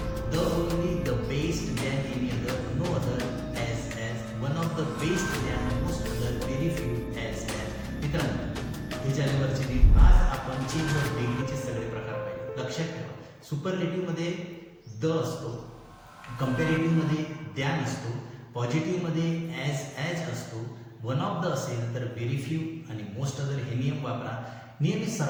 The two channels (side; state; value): both; identical; correlation 1.00